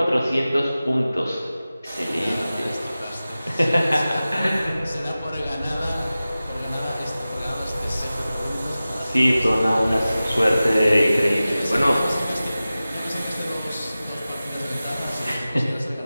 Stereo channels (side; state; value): both; inverted; correlation -0.96